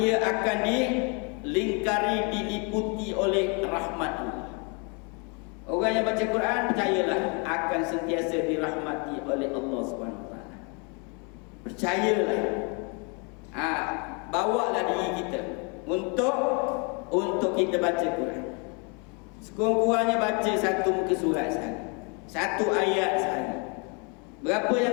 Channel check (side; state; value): right; quieter; 34.3 dB